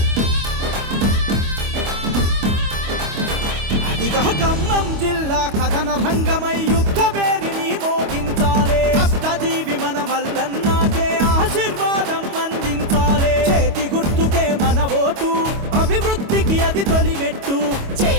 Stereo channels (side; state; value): left; late; 25 ms